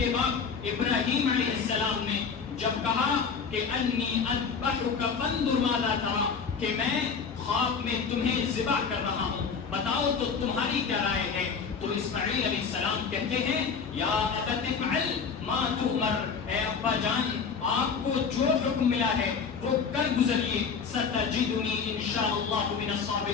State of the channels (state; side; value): quieter; right; 5.8 dB